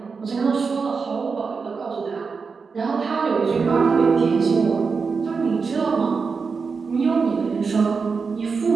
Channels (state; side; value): quieter; left; 5.0 dB